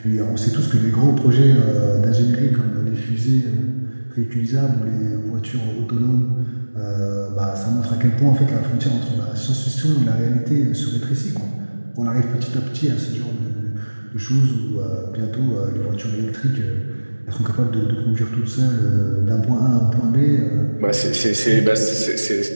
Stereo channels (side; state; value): both; inverted; correlation -1.00